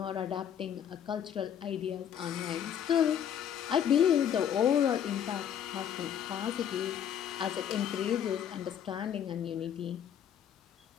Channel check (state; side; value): quieter; right; 9.3 dB